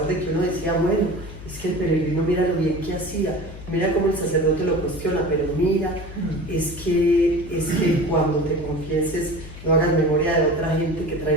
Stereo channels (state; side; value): noise; left; hum, 14 dB below the sound